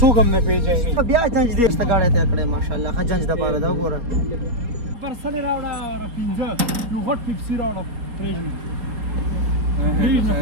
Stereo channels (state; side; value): late; left; 4.5 ms